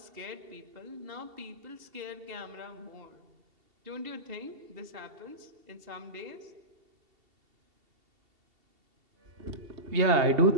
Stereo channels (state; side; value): late; left; 2.7 ms